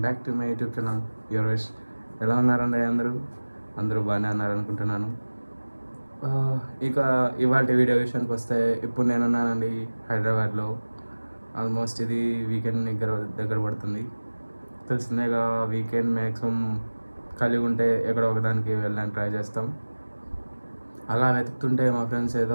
back to my YouTube channel your wish. ఎలా ఉన్నారండి అందరూ బాగానే ఉన్నారనుకుంటున్నాను. ఇక ఇవాళ వీడియో విషయానికి వస్తే, ఇప్పుడు నేనున్నానండి హైదరాబాద్లో. ఆల్మోస్ట్ ఇది వీకెండ్ దగ్గర పడుతుంది. తెలిసిందేగా, వీకెండ్ మ్యాక్సిమం కలిగి ఉంటే ఎక్కడో ఒకదానికి వెళ్ళడానికి ట్రై చేస్తాం. అలా వెతుకుతుంటే మా ఫ్రెండ్స్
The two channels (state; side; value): inverted; both; correlation -1.00